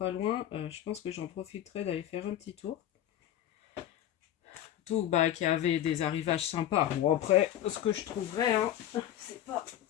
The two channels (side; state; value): right; quieter; 11.7 dB